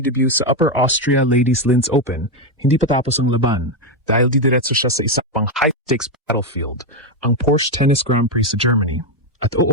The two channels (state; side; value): normal; both; correlation 0.06